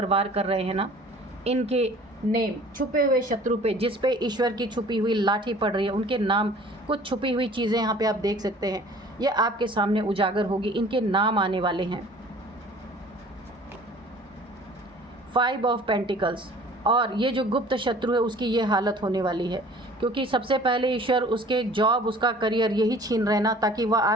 वार कर रहे हैं ना, इनके नेम, छुपे हुए शत्रु पे, जिस पे ईश्वर की छुपी हुई लाठी पड़ रही है, उनके नाम, कुछ छुपी हुई चीज़ें यहाँ पे आप देख सकते हैं, ये आपके सामने उजागर होगी, इनके नाम आने वाले हैं। 5 ऑफ पेंटिकल्स, और ये जो गुप्त शत्रु है उसकी ये हालत होने वाली है, क्योंकि सबसे पहले ईश्वर उसके जॉब, उसका करियर यही छीन रहे ना, ताकि वह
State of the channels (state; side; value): normal; both; correlation 0.49